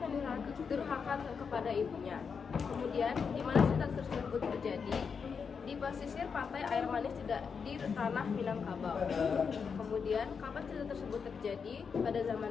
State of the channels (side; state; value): right; quieter; 6.0 dB